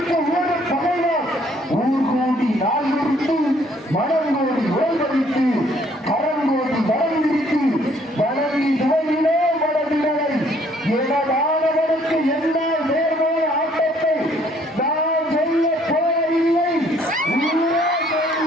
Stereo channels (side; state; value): both; normal; correlation 0.63